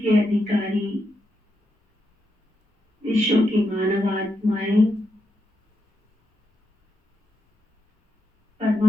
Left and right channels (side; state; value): both; normal; correlation 0.84